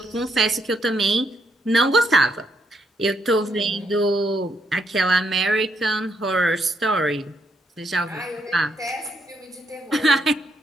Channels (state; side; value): normal; both; correlation 0.76